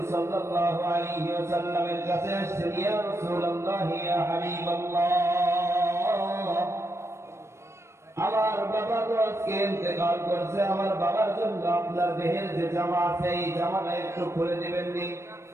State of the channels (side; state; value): left; late; 0.13 ms